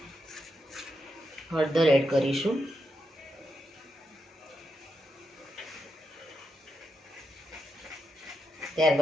હળદર એડ કરીશું।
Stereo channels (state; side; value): normal; both; correlation 0.85